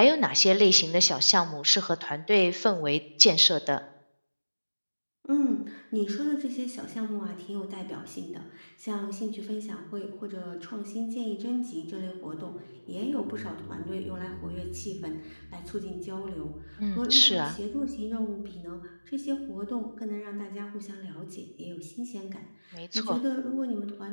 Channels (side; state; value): both; inverted; correlation -1.00